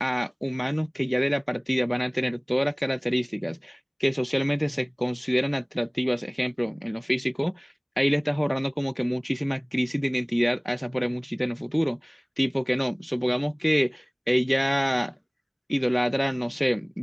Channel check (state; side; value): identical; both; correlation 1.00